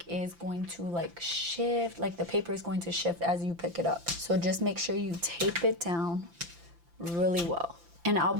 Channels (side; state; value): left; late; 5.8 ms